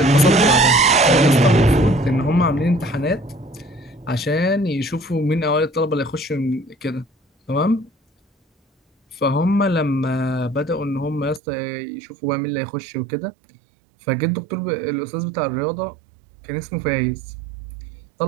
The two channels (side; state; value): left; drops out; at 11.4 s